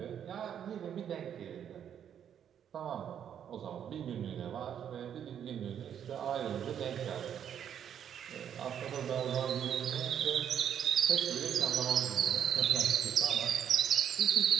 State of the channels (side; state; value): left; quieter; 9.1 dB